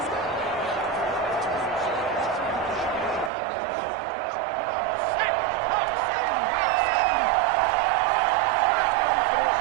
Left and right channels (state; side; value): drops out; left; at 3.3 s